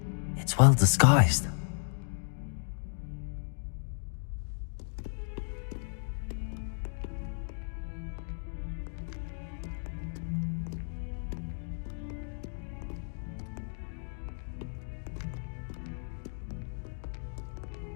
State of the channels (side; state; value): right; silent; digital silence